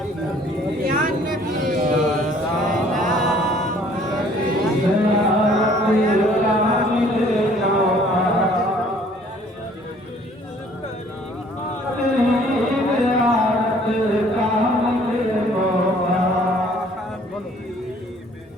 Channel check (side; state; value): both; normal; correlation 0.57